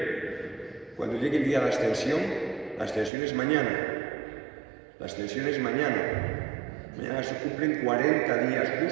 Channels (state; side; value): drops out; left; at 3.1 s